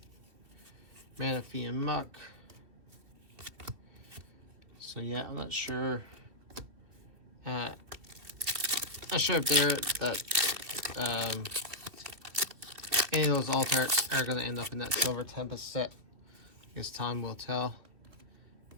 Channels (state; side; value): late; left; 2.8 ms